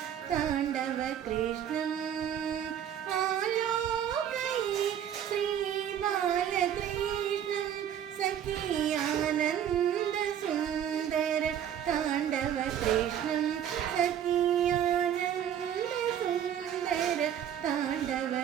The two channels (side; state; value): left; quieter; 9.6 dB